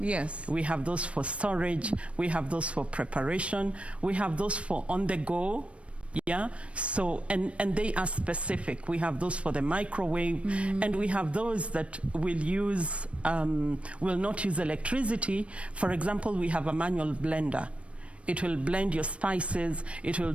We have those for storage, we have those for preparation, we have those for on the go. Yeah, so, and they are specific. We have those for the microwave, and we have those that will use, will not use electricity. For example, we have a manual blender. It will blend your spices, it will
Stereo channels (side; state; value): left; late; 0.061 ms